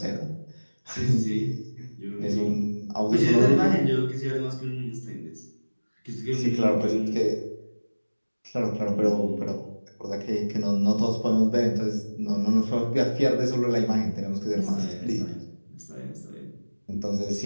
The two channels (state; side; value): inverted; both; correlation -1.00